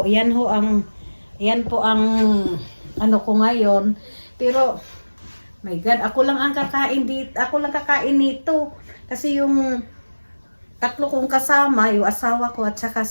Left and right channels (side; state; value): both; inverted; correlation -1.00